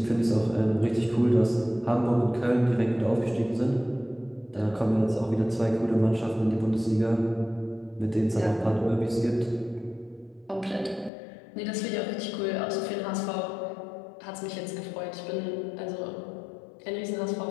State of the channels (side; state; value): right; drops out; at 11.1 s